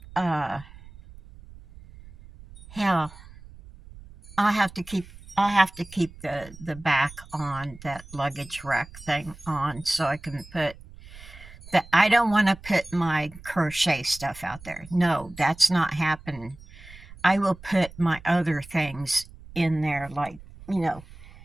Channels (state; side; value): noise; right; rumble, 19 dB below the sound